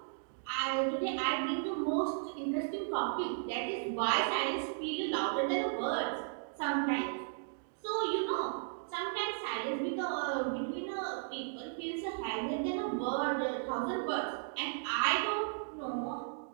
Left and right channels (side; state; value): left; silent; digital silence